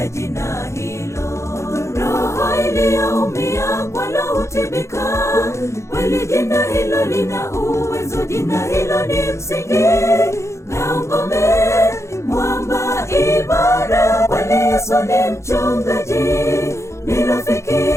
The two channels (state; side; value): late; right; 0.14 ms